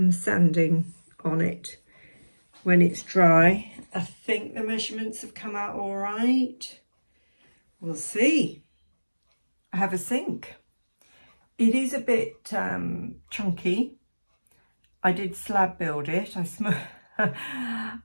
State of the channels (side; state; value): both; inverted; correlation -1.00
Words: sanding on it when it's dry. I think the measurements have come out all right. We'll see. I have a sink. It is a bit chunky. I did slab build it. I